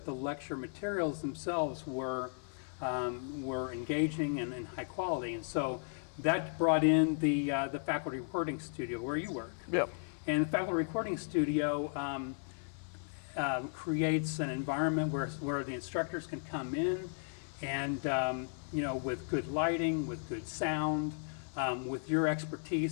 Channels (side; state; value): right; silent; 54 dB below the other